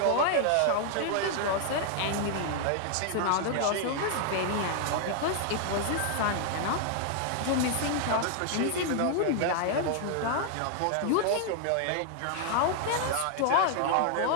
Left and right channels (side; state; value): both; different; correlation 0.00